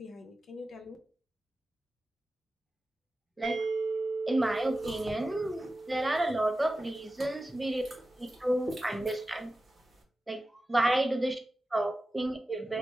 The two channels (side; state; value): both; normal; correlation 0.94